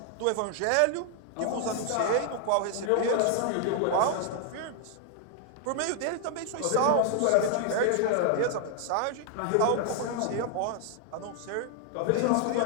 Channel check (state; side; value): different; both; correlation 0.00